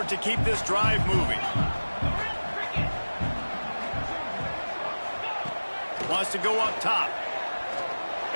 to keep this drive moving. Wants to go up top.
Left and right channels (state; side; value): inverted; both; correlation -1.00